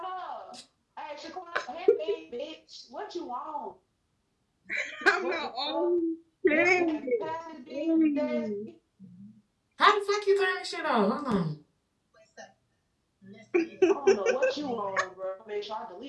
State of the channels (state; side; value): identical; both; correlation 1.00